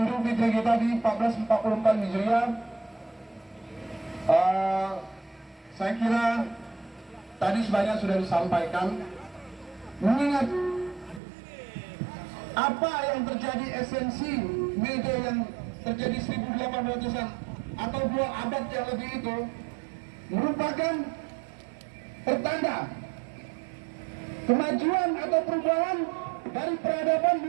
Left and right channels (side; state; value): left; drops out; at 11.2 s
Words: Fitri kita di 1444 Hijriah. Saya kira tadi sebanyak sudah disampaikan. Mengingat apa yang terjadi esensi media yang terjadi 1800-an atau 2 abad yang lebih itu merupakan pertanda kemajuan atau perubahan dari peradaban